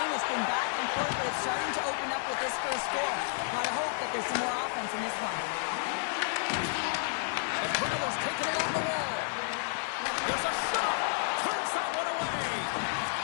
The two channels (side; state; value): right; silent; 57 dB below the other